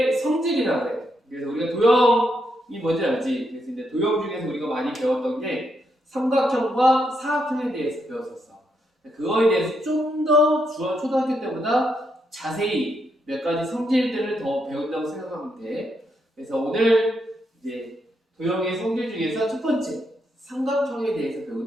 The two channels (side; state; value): both; normal; correlation 0.79